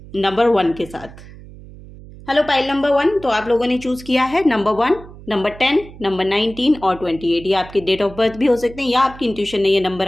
नंबर 1 के साथ। हेलो पाइल नंबर 1, तो आप लोगों ने चूज़ किया है नंबर 1, नंबर 10, नंबर 19 और 28। ये आपके डेट ऑफ बर्थ भी हो सकते हैं या आपकी इंट्यूशन ने ये नंबर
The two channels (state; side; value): noise; right; hum, 18 dB below the sound